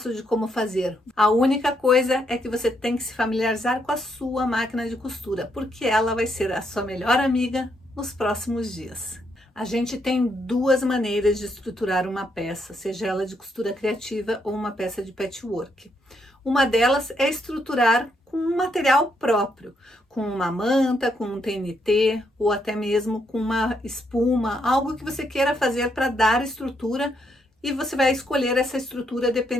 de como fazer. A única coisa é que você tem que se familiarizar com a sua máquina de costura, porque ela vai ser a sua melhor amiga nos próximos dias. A gente tem duas maneiras de estruturar uma peça, seja ela de costura criativa ou uma peça de patchwork. Uma delas é estruturar com um material próprio, com uma manta, com um TNT ou até mesmo com uma espuma, algo que você queira fazer para dar estrutura. E você vai escolher essa estrutura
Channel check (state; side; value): normal; both; correlation 0.76